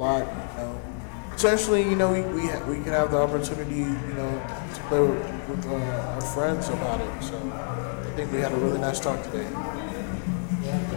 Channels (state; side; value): silent; right; 58 dB below the other